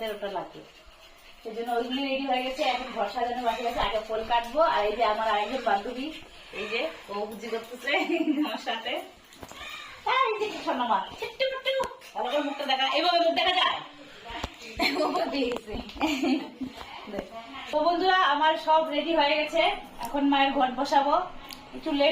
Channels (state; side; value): identical; both; correlation 1.00